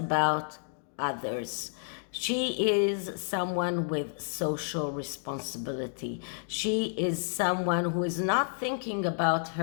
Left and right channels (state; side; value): silent; right; digital silence